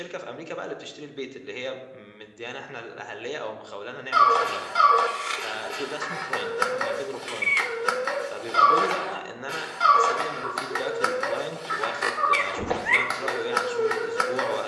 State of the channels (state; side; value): identical; both; correlation 1.00